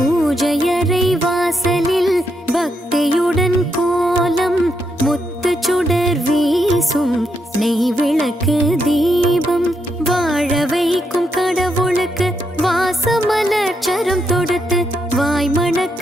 வாசலில் பக்தியுடன் கோலம் முத்து சுடர் வீசும் நெய் விளக்கு தீபம் வாழ வைக்கும் கடவுளுக்கு வாசமலர் சரம் தொடுத்து வாய்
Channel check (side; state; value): both; normal; correlation 0.80